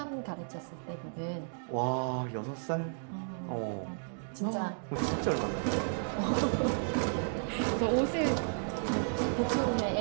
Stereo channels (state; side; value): silent; left; digital silence